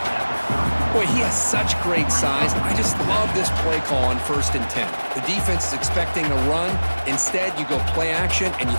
Boy, he has such great size. I just love this play call on 1st and 10. The defense is expecting a run. Instead, you go play action, and you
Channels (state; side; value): inverted; both; correlation -1.00